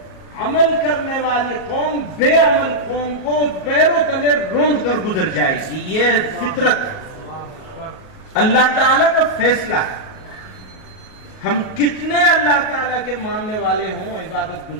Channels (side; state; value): right; late; 38 ms